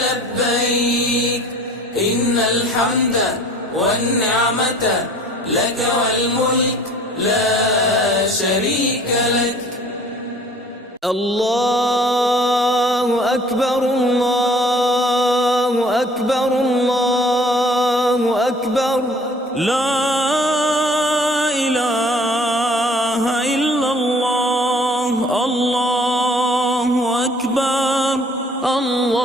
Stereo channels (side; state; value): both; normal; correlation 0.52